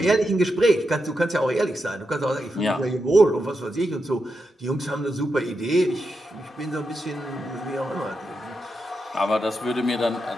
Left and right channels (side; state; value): both; normal; correlation 0.86